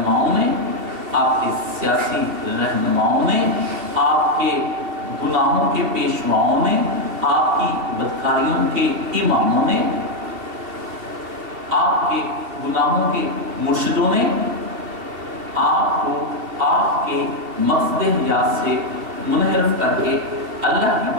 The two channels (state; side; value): late; left; 2.7 ms